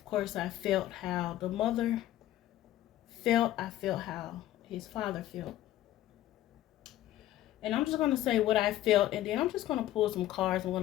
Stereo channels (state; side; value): quieter; right; 13.9 dB